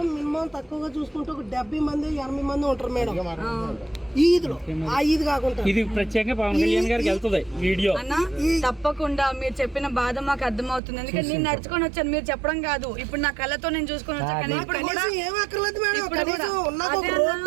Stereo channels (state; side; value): drops out; left; at 10.8 s